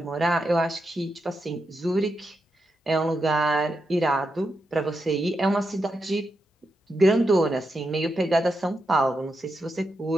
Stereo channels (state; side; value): normal; both; correlation 0.85